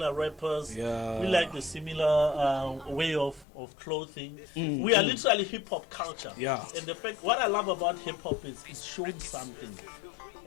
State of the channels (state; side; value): drops out; right; at 3.5 s